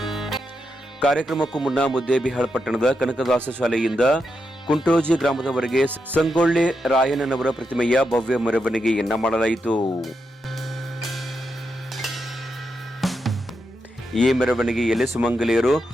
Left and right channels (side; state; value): both; normal; correlation 0.85